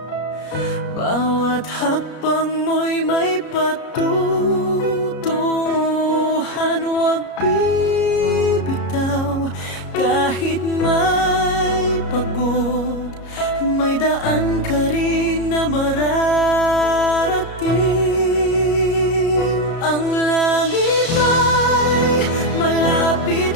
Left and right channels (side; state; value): right; late; 33 ms